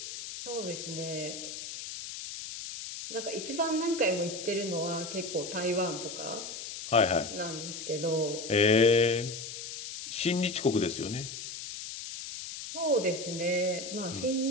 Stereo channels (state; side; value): noise; left; hiss, 8 dB below the sound